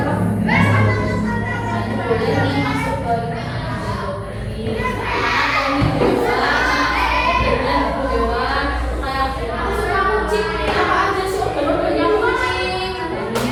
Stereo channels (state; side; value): identical; both; correlation 1.00